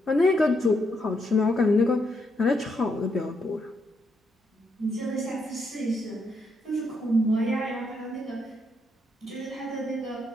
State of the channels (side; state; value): both; normal; correlation 0.78